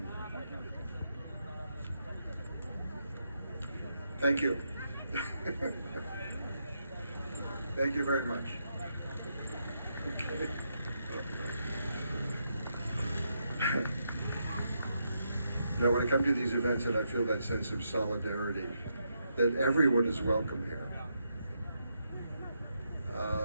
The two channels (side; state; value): both; inverted; correlation -0.81